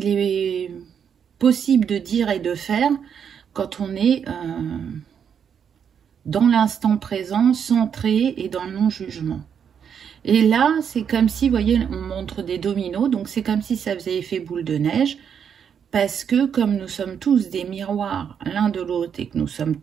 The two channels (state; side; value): quieter; left; 7.7 dB